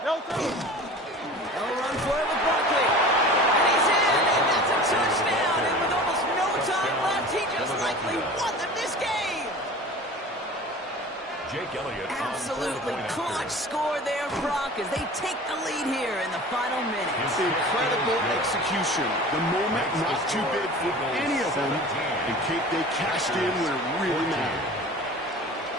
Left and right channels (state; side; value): normal; both; correlation 0.39